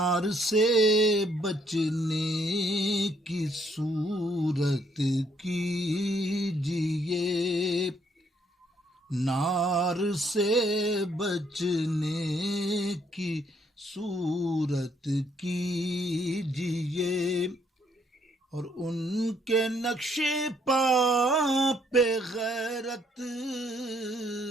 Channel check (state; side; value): normal; both; correlation 0.69